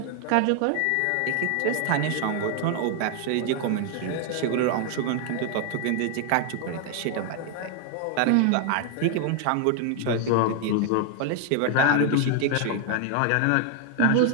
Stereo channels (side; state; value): both; different; correlation 0.00